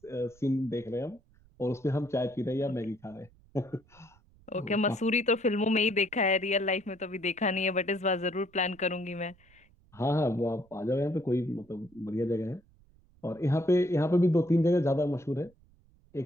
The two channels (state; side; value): noise; right; rumble, 29 dB below the sound